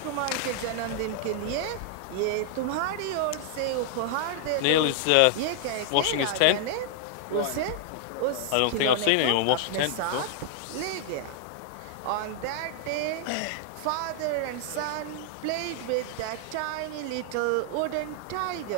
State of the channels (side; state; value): both; different; correlation 0.00